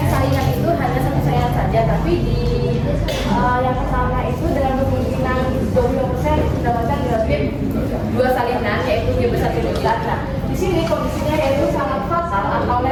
saingan itu hanya satu saingan saja, tapi di yang pertama itu dengan kemungkinan 20% mendapatkan genotip 2 salinan yaitu G besar T besar. Nah, di sini kondisinya yaitu sangat fatal atau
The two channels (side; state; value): both; identical; correlation 1.00